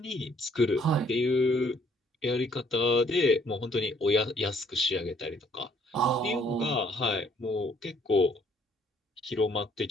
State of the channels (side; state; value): both; normal; correlation 0.64